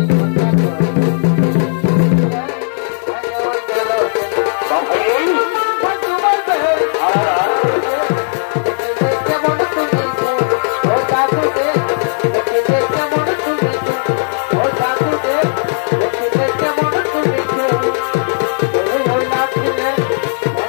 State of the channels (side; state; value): right; silent; digital silence